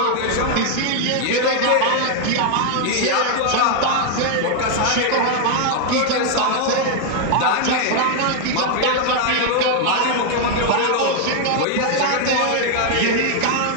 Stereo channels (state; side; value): different; both; correlation 0.00